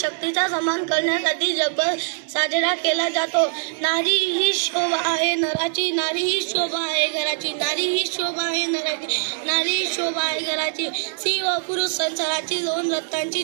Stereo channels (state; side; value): silent; left; digital silence